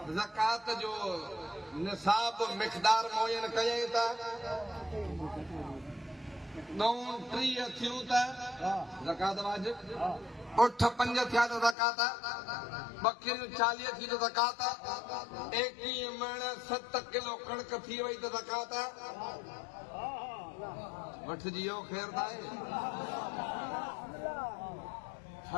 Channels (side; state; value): right; drops out; at 11.8 s